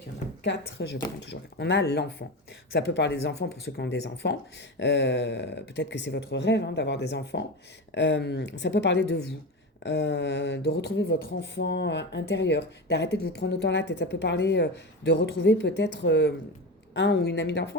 Il y en a 4, je prends toujours 4. On a l'enfant. Ça peut parler des enfants pour ceux qui ont des enfants. Peut-être que c'est votre rêve, hein, d'avoir des enfants. Ça peut parler de vous. De retrouver votre enfant intérieur, d'arrêter de vous prendre autant la tête. Ça peut parler de retrouver peut-être un ou une amie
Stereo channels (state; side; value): normal; both; correlation 0.22